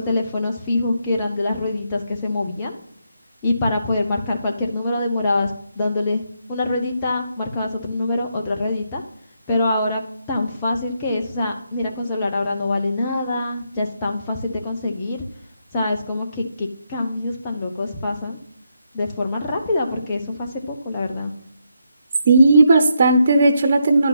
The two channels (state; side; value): inverted; both; correlation -0.79